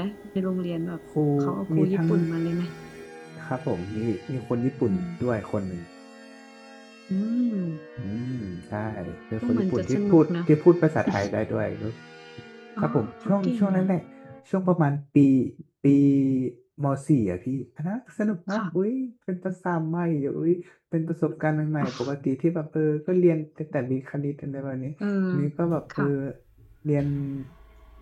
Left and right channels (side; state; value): both; identical; correlation 1.00